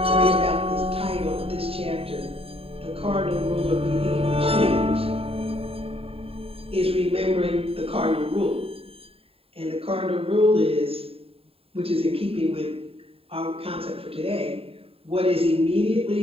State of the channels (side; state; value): left; late; 0.27 ms